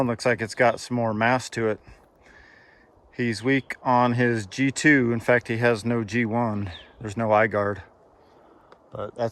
looks like it's got some more mass to it. He's weak on his G2. In fact, he has no G1. There's no eye guard. But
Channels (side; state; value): both; identical; correlation 1.00